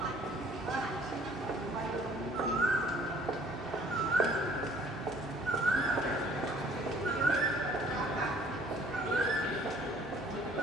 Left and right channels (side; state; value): both; normal; correlation 0.56